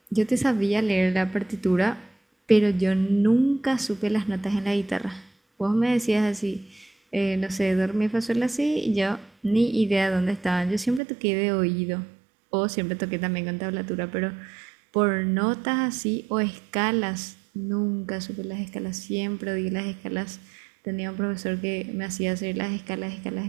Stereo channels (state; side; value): drops out; left; at 11.0 s